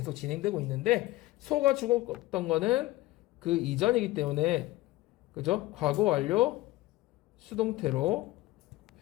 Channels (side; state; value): right; quieter; 18.1 dB